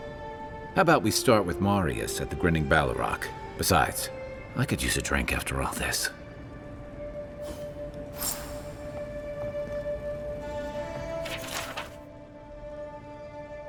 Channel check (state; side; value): identical; both; correlation 1.00